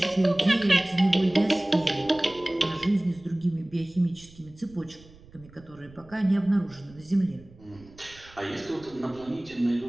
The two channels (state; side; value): noise; right; rumble, 23 dB below the sound